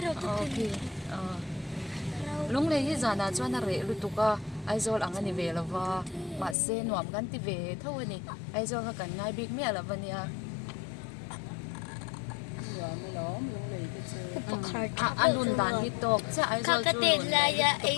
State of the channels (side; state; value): right; drops out; at 6.6 s